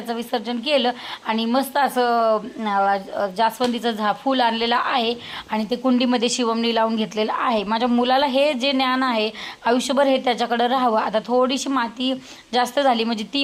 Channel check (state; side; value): identical; both; correlation 1.00